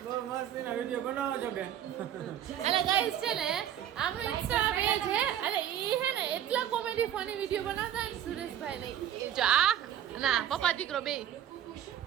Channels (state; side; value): quieter; left; 10.5 dB